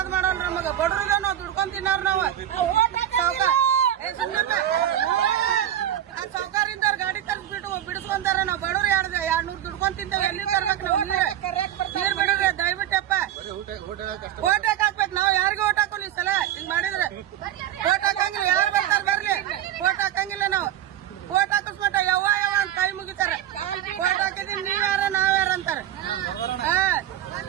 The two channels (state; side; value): quieter; left; 11.7 dB